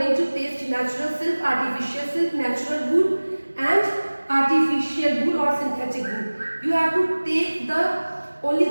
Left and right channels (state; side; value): inverted; both; correlation -1.00